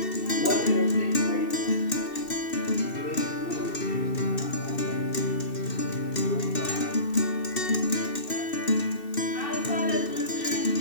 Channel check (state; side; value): late; right; 2.7 ms